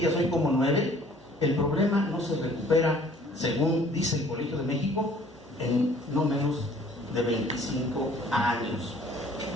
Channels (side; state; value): both; normal; correlation 0.55